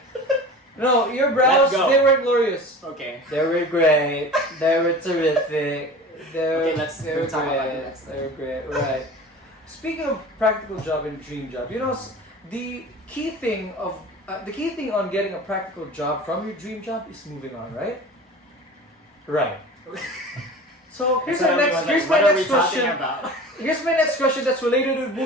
No, your brows, Let's go. they were glorious. Okay. They were great. They were terrific. Okay, let's they were talk about great. the next They were great. Right. Speaking of practical job and dream job, the key thing on getting a practical job from your dream job is moving on, right? Right. So here's my next question. About? Here's my next question that's related to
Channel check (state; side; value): normal; both; correlation 0.38